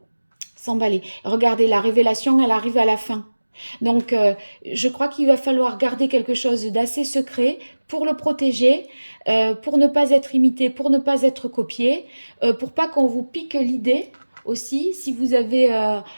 s'emballer. Regardez, la révélation, elle arrive à la fin. Donc, je crois qu'il va falloir garder quelque chose d'assez secret pour le protéger, pour ne pas être imité, pour ne pas être copié, pour pas qu'on vous pique l'idée aussi. Si vous avez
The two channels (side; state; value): both; inverted; correlation -1.00